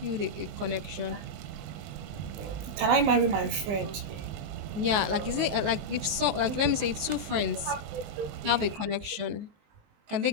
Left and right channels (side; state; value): left; late; 20 ms